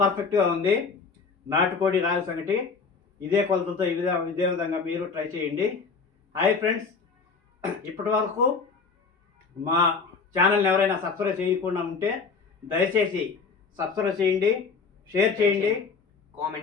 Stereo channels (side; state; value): right; quieter; 5.0 dB